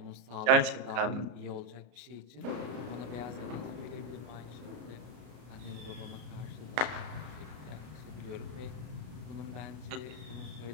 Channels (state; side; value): late; left; 33 ms